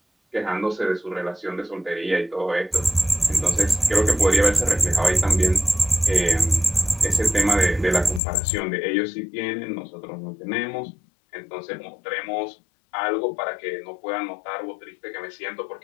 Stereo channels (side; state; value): right; drops out; at 8.2 s